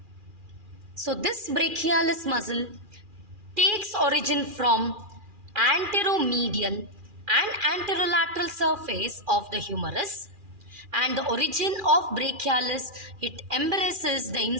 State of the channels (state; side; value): late; left; 2.4 ms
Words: So this brachialis muscle takes origin from anteromedial and anterolateral surface of the humerus, and the origin of brachialis, it embraces the